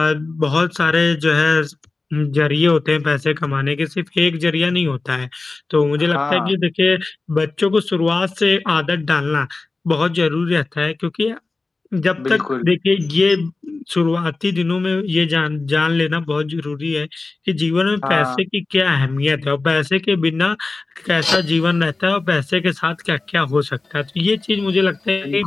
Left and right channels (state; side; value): quieter; right; 3.6 dB